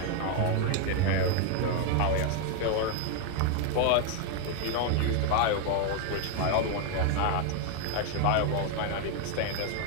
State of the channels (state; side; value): different; both; correlation 0.01